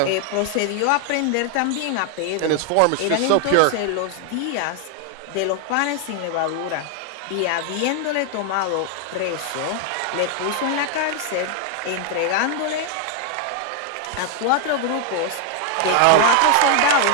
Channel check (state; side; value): different; both; correlation 0.00